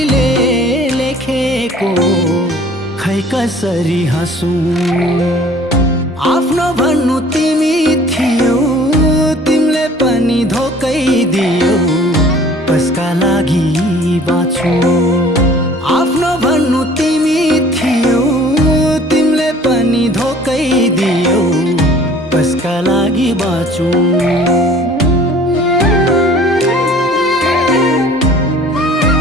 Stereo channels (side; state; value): both; normal; correlation 0.51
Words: लेखेको खै कसरी हाँसौँ। आफ्नो भन्नु तिमी थियौ, तिमीले पनि धोकै दियौ, कसका लागि बाँचु। आफ्नो भन्नु तिमी थियौ, तिमीले पनि धोकै दियौ, कसका लागि बाँचु।